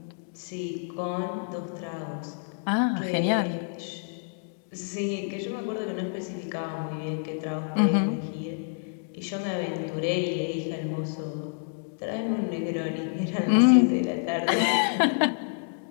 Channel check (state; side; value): silent; right; digital silence